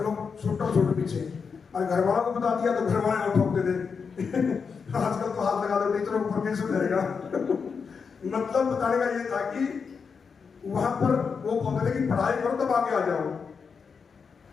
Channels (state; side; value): quieter; right; 5.7 dB